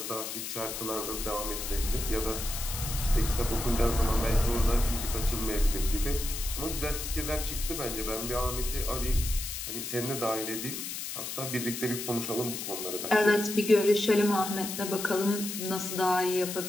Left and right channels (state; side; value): noise; left; hiss, 6 dB below the sound